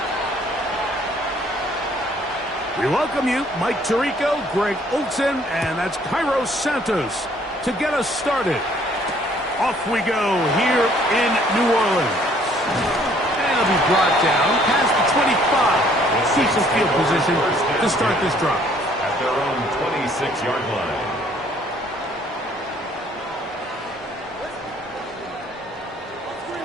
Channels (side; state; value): both; normal; correlation 0.61